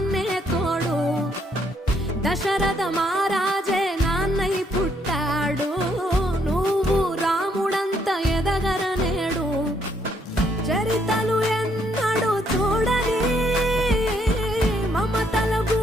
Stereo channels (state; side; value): normal; both; correlation 0.71